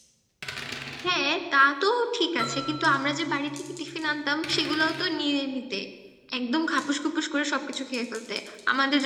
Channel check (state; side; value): identical; both; correlation 1.00